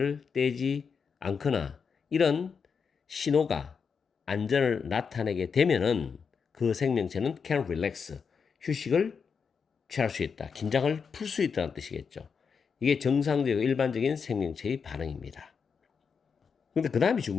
떼지 않거나 이런 신호가 안전을 나타내게 되면은 그 생명체는 can relax, 휴식을 취할 수 있다, 긴장을 풀 수 있다는 뜻이겠죠. 이게 정상적이고 일반적인 생명체의 반응입니다. 근데 그 다음이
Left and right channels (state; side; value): quieter; right; 6.0 dB